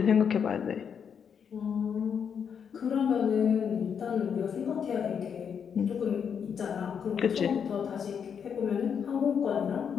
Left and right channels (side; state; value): right; quieter; 7.3 dB